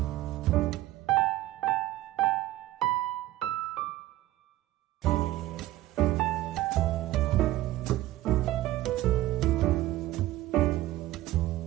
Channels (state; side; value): quieter; left; 15.8 dB